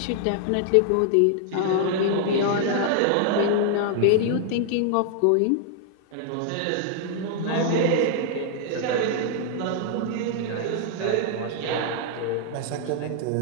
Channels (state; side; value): different; both; correlation 0.00